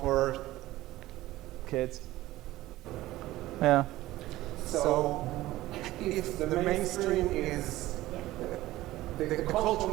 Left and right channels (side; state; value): left; quieter; 16.6 dB